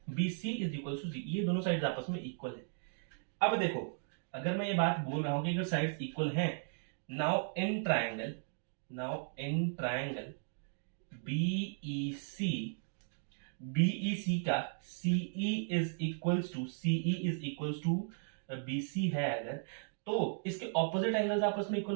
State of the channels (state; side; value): silent; left; digital silence